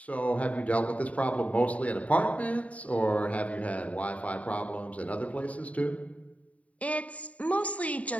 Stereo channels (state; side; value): late; right; 0.068 ms